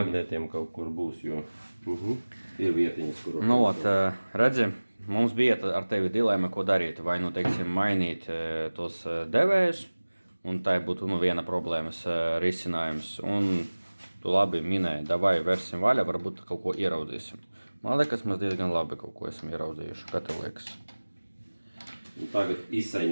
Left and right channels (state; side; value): inverted; both; correlation -1.00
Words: kaut kur būs, jo ir vietiņas, kur... Nu, redzi, mums bija ar tevi dilēma, ko darīt. Vai, nu, teiksim, mainīt tos devējus, un tai būtu, nu, viena problēmas risinājums. Un tu labi minēji, davai versim vaļā, varbūt kaut ko ieraudzīsim. Man liekas, mēs diezgan labi kaut ko esam ieraudzījuši. Kā tev liekas? Tagad